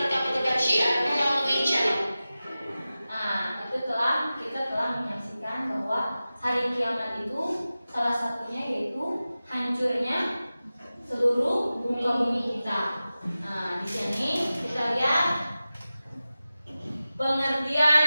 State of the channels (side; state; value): both; inverted; correlation -0.95